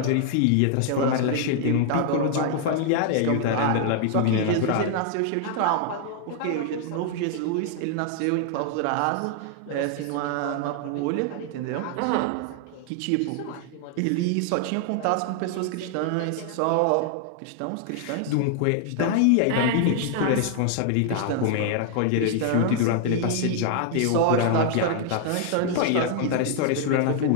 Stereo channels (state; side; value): different; both; correlation 0.00